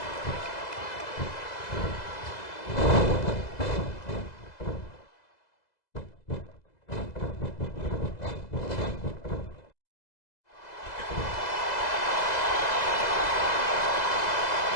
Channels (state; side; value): late; right; 2.0 ms